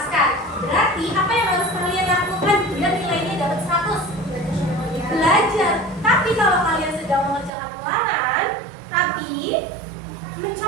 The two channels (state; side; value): drops out; left; at 7.5 s